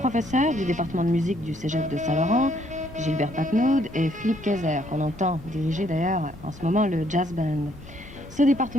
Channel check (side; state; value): both; normal; correlation 0.68